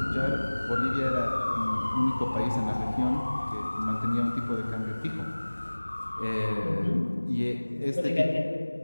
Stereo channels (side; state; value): both; inverted; correlation -1.00